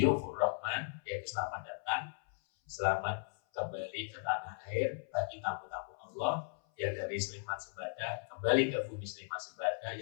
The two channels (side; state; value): right; silent; 53 dB below the other